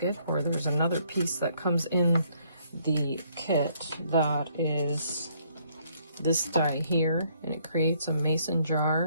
or there's another piece that comes in the kit that is this die here, and it creates a mason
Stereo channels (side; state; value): both; inverted; correlation -0.67